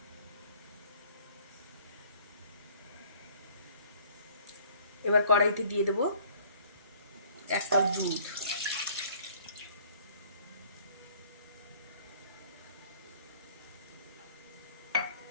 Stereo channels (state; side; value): inverted; both; correlation -0.56